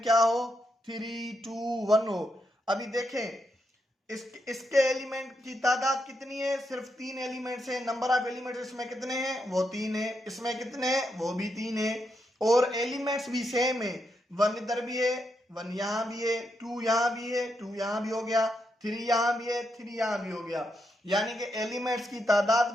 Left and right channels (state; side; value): normal; both; correlation 0.82